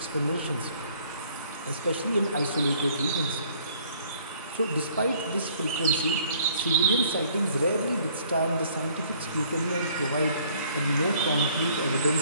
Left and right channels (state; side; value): inverted; both; correlation -0.60